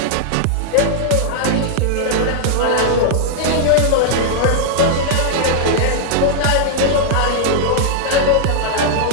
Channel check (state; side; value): different; both; correlation -0.01